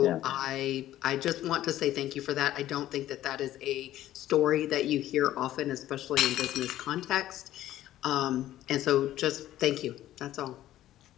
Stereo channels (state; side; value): quieter; right; 13.5 dB